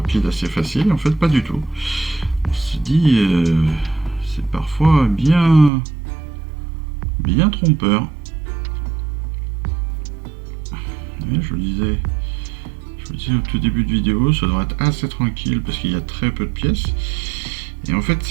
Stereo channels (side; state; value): left; drops out; at 5.7 s